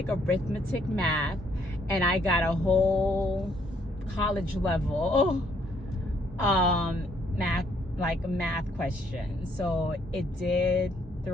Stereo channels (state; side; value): normal; both; correlation 0.68